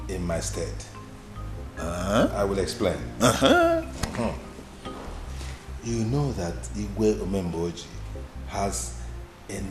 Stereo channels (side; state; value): both; identical; correlation 1.00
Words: in my stead. I will explain. You know that Igwe Omemboji has